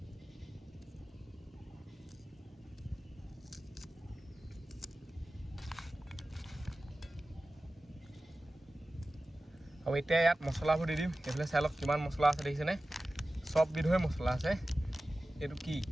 আৰু এতিয়া ইয়াত মছলাবোৰ দি দিম এইফালে চাই লওক কিমান মছলা আছে দেখিছেনে চব বিধৰে মছলা আছে এইটো কি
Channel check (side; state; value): both; normal; correlation 0.96